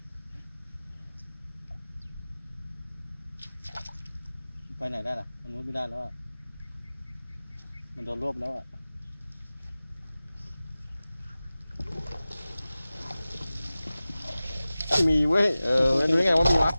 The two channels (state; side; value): inverted; both; correlation -0.97